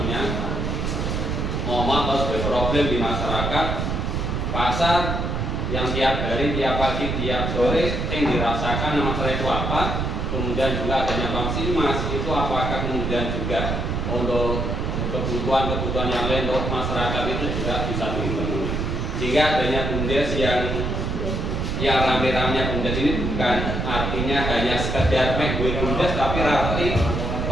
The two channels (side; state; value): right; noise; rumble, 1 dB below the sound